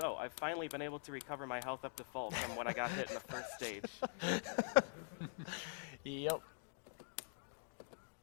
I've finally been able to recover my health up to full from when I got hit in the first stage. Yep.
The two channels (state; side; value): silent; right; digital silence